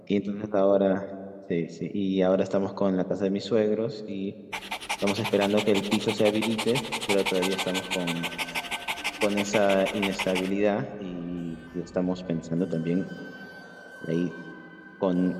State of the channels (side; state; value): both; identical; correlation 1.00